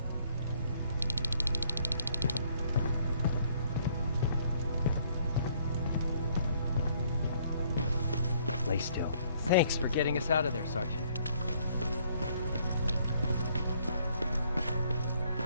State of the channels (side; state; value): both; inverted; correlation -0.64